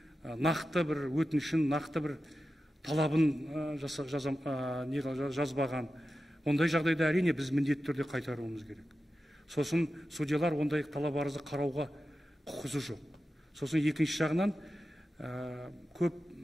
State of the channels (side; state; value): both; normal; correlation 0.92